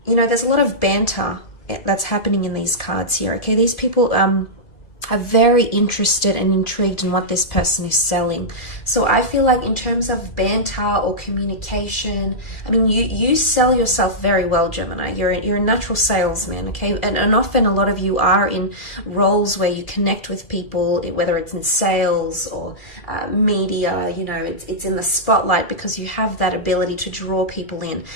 you know, there's a lot of banter that's happening in these cards here, okay? These people are very interested and intrigued in what this person is selling. So I feel like in terms of banter or communication, I mean, you sell yourself very well, Gemini. You're a natural salesman, okay? And often a lot of you are in roles where you connect with people, whether it's in sales or media, you know, it's in the spotlight because you have that ability to draw people in.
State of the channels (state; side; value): late; right; 2.0 ms